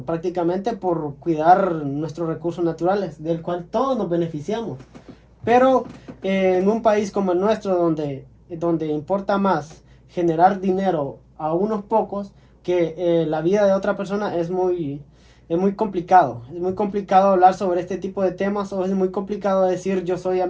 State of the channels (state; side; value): identical; both; correlation 1.00